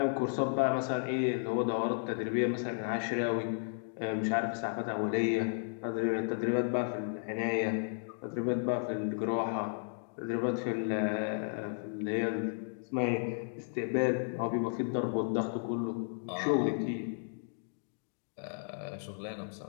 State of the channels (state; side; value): silent; right; digital silence